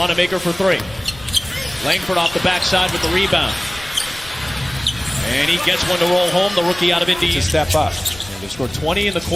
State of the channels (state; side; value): noise; left; rumble, 19 dB below the sound